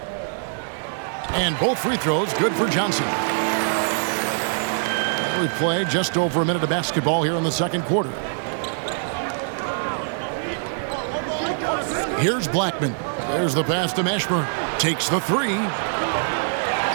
And both free throws good for Johnson. We've played just over a minute of basketball here in the second quarter. Here's Blackman. There's the pass to Mashburn. Takes the 3.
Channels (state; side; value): silent; left; 63 dB below the other